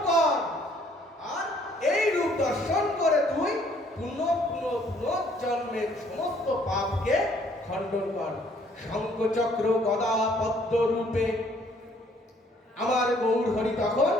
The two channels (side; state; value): both; normal; correlation 0.62